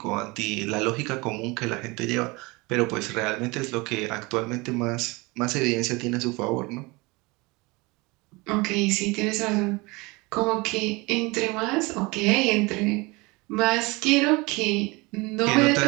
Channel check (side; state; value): left; quieter; 25.0 dB